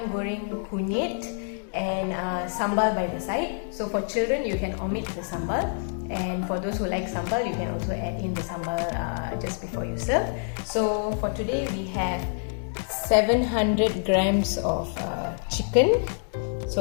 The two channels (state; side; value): silent; right; digital silence